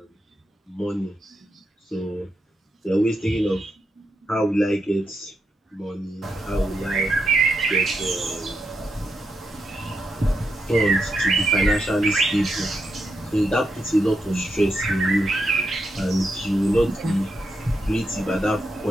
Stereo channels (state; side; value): normal; both; correlation 0.84